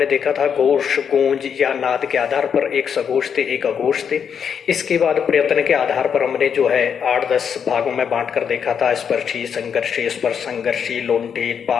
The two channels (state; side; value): quieter; right; 7.4 dB